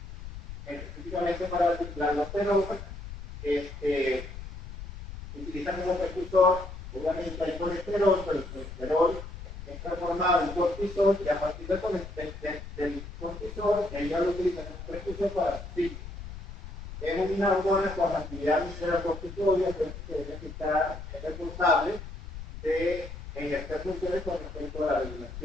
específicamente para la aldosterona, utiliza como precursor, obviamente hay colesterol, pero el colesterol es transformado en cortisol, y a partir del cortisol, ella lo utiliza como precursor para su ciclo. Es una hormona con actividad visceral corticoide, que está responsable de ejercer funciones con respecto a la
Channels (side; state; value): left; noise; rumble, 11 dB below the sound